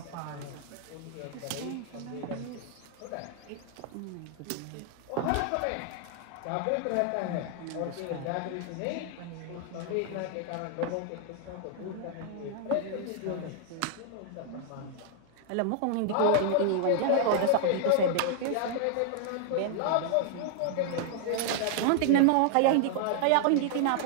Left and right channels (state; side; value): different; both; correlation 0.00